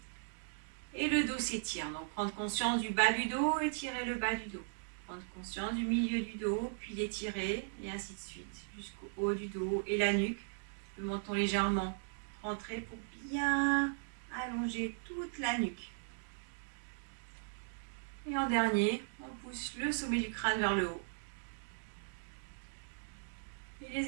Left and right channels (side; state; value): left; silent; digital silence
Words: Et le dos s'étire. Donc prendre conscience du bas du dos, étirer le bas du dos. Prendre conscience du milieu du dos, puis l'étirer, et ainsi de suite, jusqu'au haut du dos et la nuque. Le menton légèrement rentré pour bien allonger toute la nuque. Et en dernier, on pousse le sommet du crâne vers le haut. Et